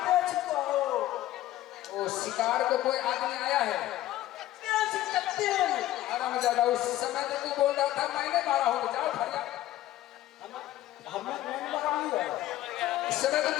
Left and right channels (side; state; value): right; quieter; 14.6 dB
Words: वो शिकार को कोई आदमी आया है। आराम ज्यादा उस समय तो तू बोल रहा था मैंने मारा हूँ, जाओ फरिया। उस समय तो